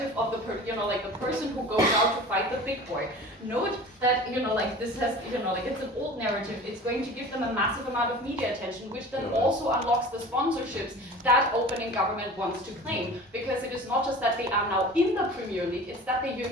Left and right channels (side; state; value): both; normal; correlation 0.39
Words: of the, the person who goes out to fight the big boy. Note that, you know, like this has, you know, like it's an old narrative. It's going to give them a massive amount of media attention, which then also unlocks the sponsorships that opening government wants to claim. Because it is not just that they are now in the Premier League, it's that they're